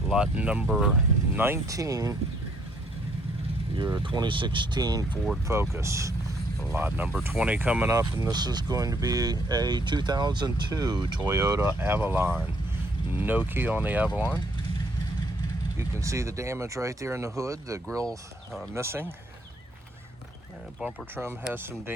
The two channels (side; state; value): both; normal; correlation 0.66